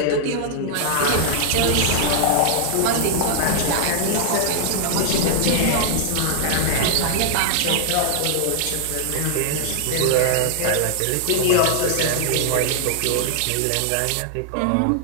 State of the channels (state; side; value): different; both; correlation -0.01